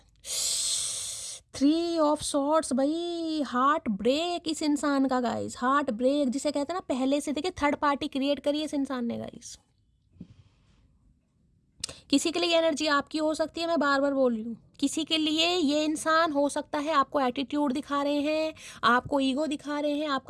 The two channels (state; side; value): identical; both; correlation 1.00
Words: 3 ऑफ सॉर्ड्स भाई, हार्ट ब्रेक इस इंसान का गाइस, हार्ट ब्रेक जिसे कहते हैं ना, पहले से देखिए थर्ड पार्टी क्रिएट करी इस इंसान ने गाइस। किसी के लिए एनर्जी आपकी हो सकती है, मैं बार बार बोल रही हूँ, किसी के लिए ये इंसान हो सकता है आपको एटीट्यूड दिखा रहे हैं, आपको ईगो दिखा रहे हैं,